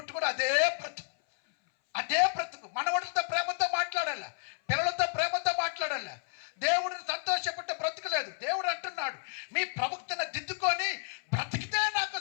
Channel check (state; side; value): silent; right; 57 dB below the other